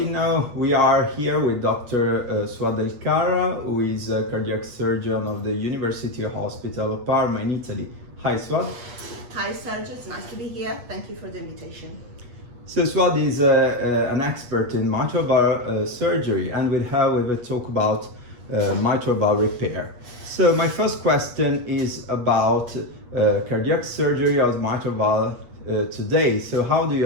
Now we are here with Doctor Suad El Qarra, who is a cardiac surgeon of the University Hospital of Parma in Italy. Hi Suad. Hi Sergio, it's nice to be here. Thank you for the invitation. So Suad is an expert in mitral valve surgery, and we will talk about mitral valve repair. So my first question is about cardiac surgery of mitral valve today. So how do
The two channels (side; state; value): left; late; 8.3 ms